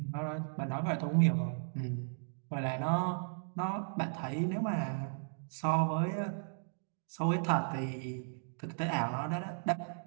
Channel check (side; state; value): left; silent; digital silence